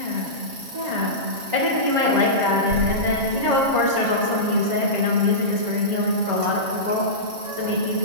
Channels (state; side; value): late; left; 7.3 ms